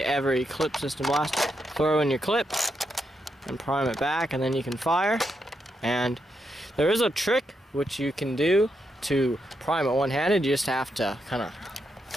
every clip system blaster, throw in your clip and prime it back, and then you can fire. And there is a trick which you can do to prime it one-handed. You just have to kind of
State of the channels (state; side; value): normal; both; correlation 0.82